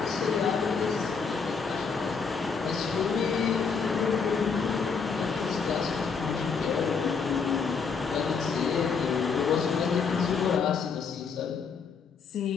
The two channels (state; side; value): quieter; right; 5.6 dB